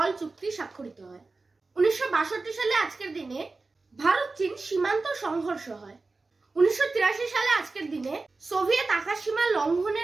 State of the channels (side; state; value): left; quieter; 3.7 dB